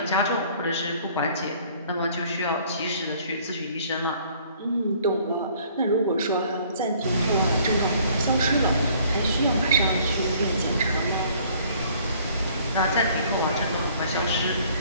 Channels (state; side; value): inverted; both; correlation -0.57